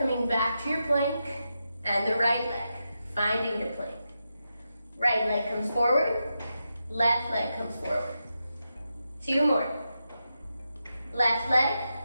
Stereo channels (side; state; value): both; inverted; correlation -0.88